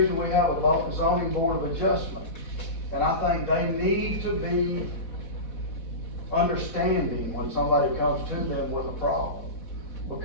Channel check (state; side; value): late; right; 4.1 ms